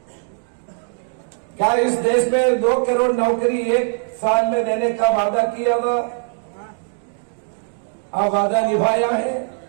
क्या इस देश में 2 करोड़ नौकरी 1 साल में देने का वादा किया था, अब वादा निभाया है।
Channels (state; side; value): silent; left; digital silence